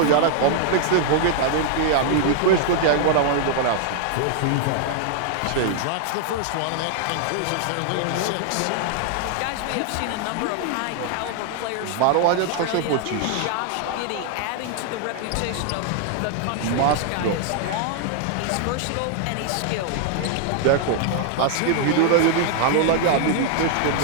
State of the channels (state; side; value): different; both; correlation 0.00